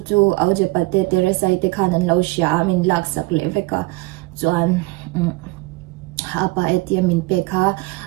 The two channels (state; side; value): quieter; left; 22.0 dB